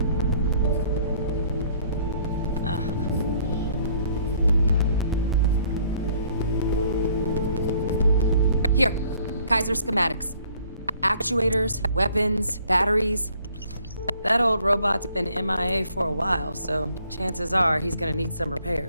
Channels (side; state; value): both; inverted; correlation -0.61